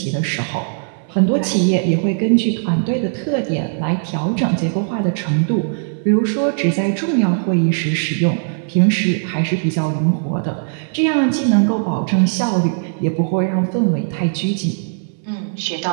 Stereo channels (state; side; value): silent; left; 64 dB below the other